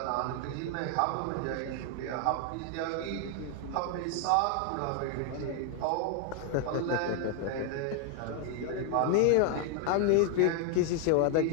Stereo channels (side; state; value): both; different; correlation 0.00